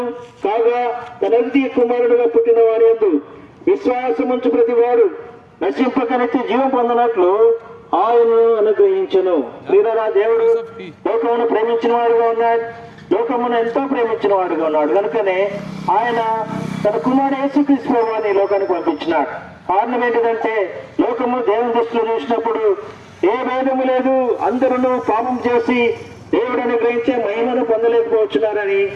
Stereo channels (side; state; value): both; identical; correlation 1.00